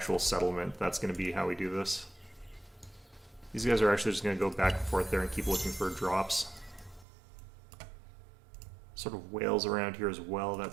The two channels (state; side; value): drops out; left; at 7.1 s